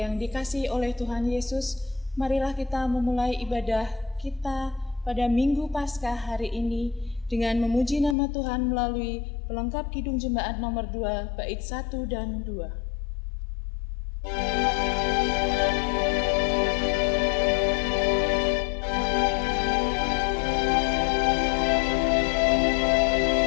dikasihi oleh Tuhan Yesus, marilah kita memulai ibadah kita pada Minggu Paskah hari ini dengan memuji nama Tuhan melalui pelengkap Kidung Jemaat nomor 2, bait 1 dan 2.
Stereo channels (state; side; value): drops out; right; at 8.2 s